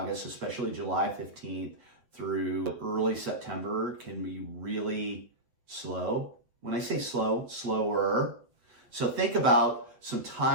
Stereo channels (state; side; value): late; left; 8.1 ms